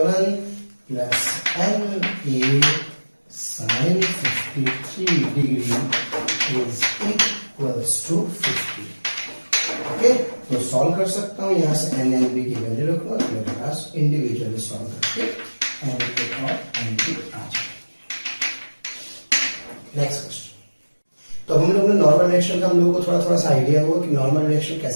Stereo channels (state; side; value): inverted; both; correlation -1.00